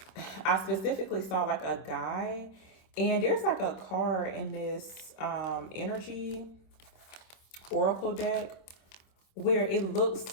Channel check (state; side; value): late; right; 26 ms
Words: I specifically saw like a guy, and there's like a card in this energy oracle deck where it